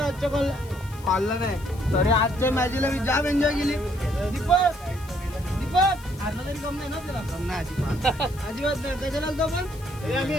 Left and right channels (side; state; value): left; noise; hiss, 21 dB below the sound